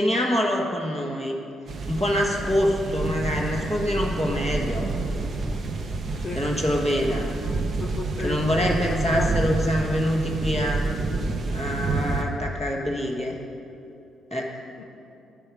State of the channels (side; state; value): both; normal; correlation 0.81